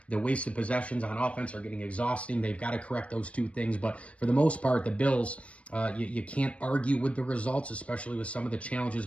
The wasted possessions on offense are getting exhausting. They've got to correct those 2 things. But for the most part, the Bills, you can't argue with the results, especially with some of the challenges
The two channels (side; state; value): right; late; 0.063 ms